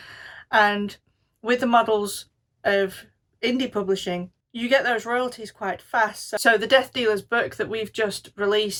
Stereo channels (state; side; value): identical; both; correlation 1.00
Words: And with the models of indie publishing, you get those royalties quite fast. So the Death Dealer's book that we've just